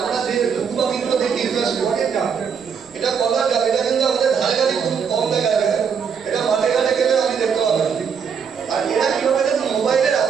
যে ঘুঘু পাখিগুলো দেখি স্পটের ডাব, এটা কলার ডাব। এটা কিন্তু আমাদের ধারে কাছে খুব কম দেখা যায়। এটা মাঠে ঘাটে গেলে আমি দেখতে পাবো। আর এরা কিভাবে দেখুন মোবাইলের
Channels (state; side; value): quieter; left; 6.7 dB